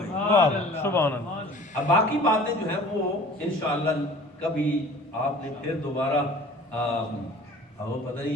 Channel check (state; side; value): normal; both; correlation 0.46